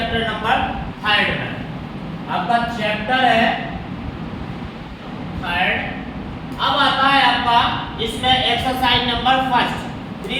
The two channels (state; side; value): identical; both; correlation 1.00